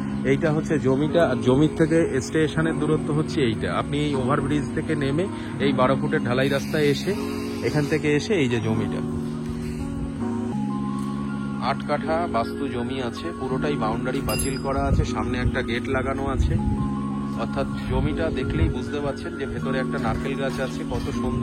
এইটা হচ্ছে জমিটা, আর জমির থেকে স্টেশনের দূরত্ব হচ্ছে এইটা। আপনি এই ওভারব্রিজ থেকে নেমে এই 12 ফুটের ঢালাই রাস্তায় এসে, এখান থেকে এসে এই যে জমিটা 8 কাঠা বাস্তু জমি আছে, পুরোটাই বাউন্ডারি পাঁচিল করা আছে, সামনে একটা গেট লাগানো আছে। অর্থাৎ জমিটা দেখলেই বুঝতে পারছেন যে ভেতরে একটা নারকেল গাছ আছে। কত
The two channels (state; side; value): identical; both; correlation 1.00